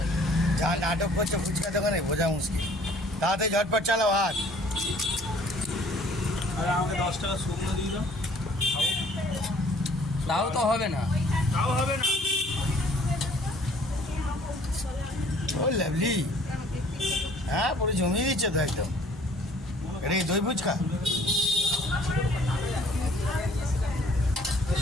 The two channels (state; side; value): normal; both; correlation 0.56